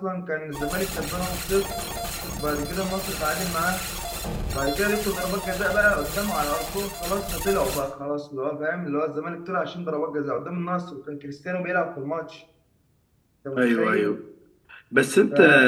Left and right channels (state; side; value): identical; both; correlation 1.00